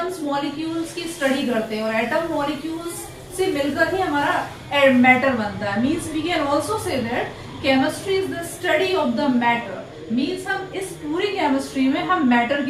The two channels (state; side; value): identical; both; correlation 1.00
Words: मॉलिक्यूल्स की स्टडी करते हैं और एटम मॉलिक्यूल्स से मिलकर ही हमारा मैटर बनता है। Means we can also say that chemistry is the study of the matter. Means हम इस पूरी केमिस्ट्री में हम मैटर